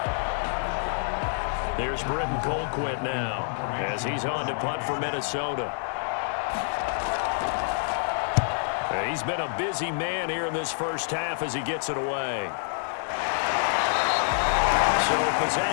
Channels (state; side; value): silent; right; digital silence